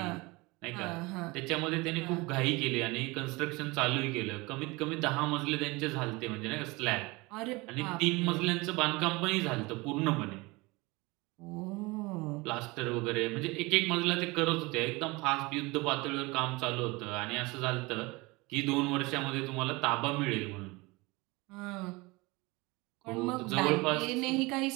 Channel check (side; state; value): left; quieter; 24.0 dB